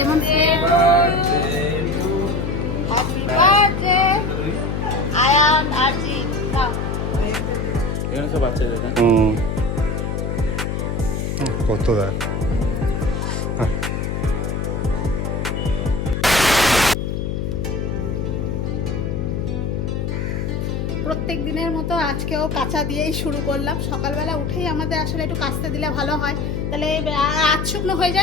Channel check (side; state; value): left; noise; hum, 2 dB below the sound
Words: কত দেয় প্রত্যেক দিনের মতো আজকেও কাঁচা দিয়েই শুরু করলাম। সকালবেলা উঠেই আমাদের আসলে একটু কাচতে দিলে ভালো হয়, তাহলে আজ শুকনো হয়ে